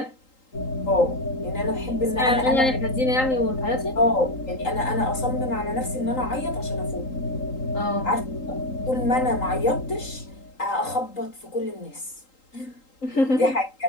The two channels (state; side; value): late; right; 3.8 ms